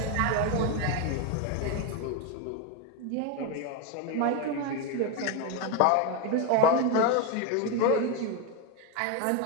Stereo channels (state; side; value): different; both; correlation 0.02